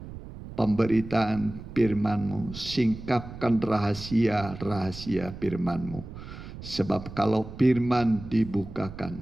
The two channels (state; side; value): noise; right; rumble, 13 dB below the sound